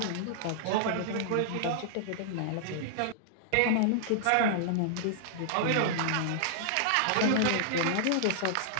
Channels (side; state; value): both; different; correlation -0.01